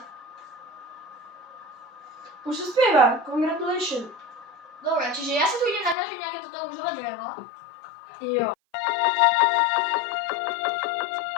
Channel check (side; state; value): right; drops out; at 6.0 s